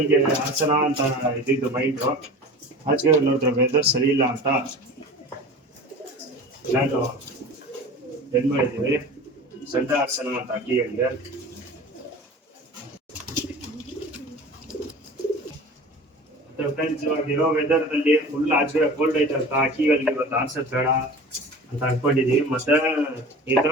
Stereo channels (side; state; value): both; normal; correlation 0.37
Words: ಹಾಸನ ಅಂತ ಇದ್ದಿದ್ದು ಮೈಂಡು. ಆಚೆ ನೋಡಿದ್ರೆ ವೆದರ್ ಸರಿ ಇಲ್ಲ ಅಂತ ನಾನು ಏನು ಮಾಡಿದ್ದೀವಿ, ಸಂಡೆ ಹಾಸನ ಅಂತ ಅಕ್ಕಿಗಳಿಗೆ. ಫ್ರೆಂಡ್ಸ್, ಇವಾಗ ಇರೋ ವೆದರ್ದಲ್ಲಿ ಫುಲ್ ಆಚೆ ಕೋಲ್ಡ್ ಐತೆ ಅಂತ ಅಕ್ಕಿಗಳಿಗೆ ಇವತ್ತು ಆರ್ಸೋದು ಬೇಡ ಅಂತ ಅನ್ಕೊಂಡಿದೀವಿ. ಮತ್ತೆ ಈ ತರ